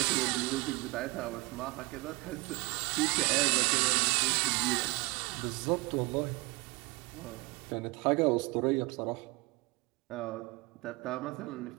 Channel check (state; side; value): quieter; left; 24.4 dB